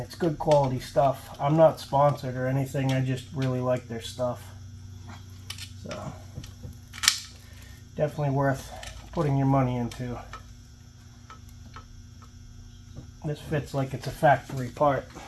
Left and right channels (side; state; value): both; identical; correlation 1.00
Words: good quality stuff. I'm not sponsored or anything. I just really like their stuff. So, definitely worth putting your money into. This fits like it's a factory part,